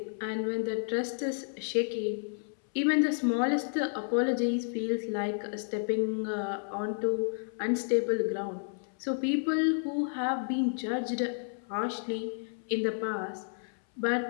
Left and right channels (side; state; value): right; silent; 57 dB below the other